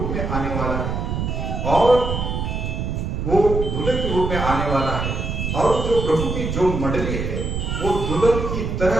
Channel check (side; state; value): right; noise; rumble, 2 dB below the sound